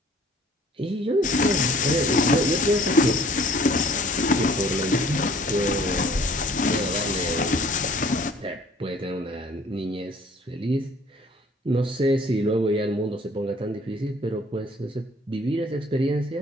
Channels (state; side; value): normal; both; correlation 0.54